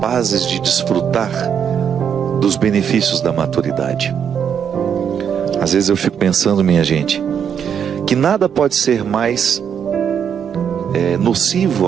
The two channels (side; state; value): left; quieter; 7.9 dB